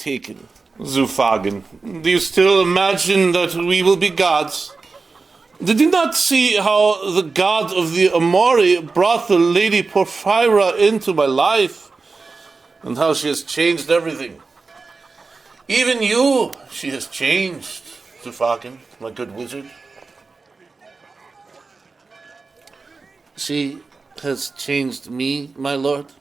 Zufagan, do you still imagine that we will be gods? Did you not see how the god of the Amori brought the Lady Porphyra into my life? And how she has changed everything. Even you, she has changed, Zufagan, my good wizard. She has changed me, my lord.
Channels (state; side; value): quieter; left; 4.1 dB